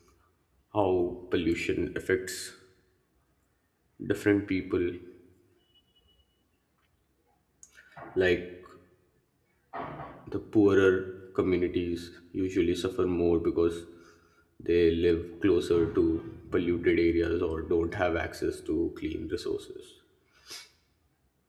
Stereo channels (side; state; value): both; identical; correlation 1.00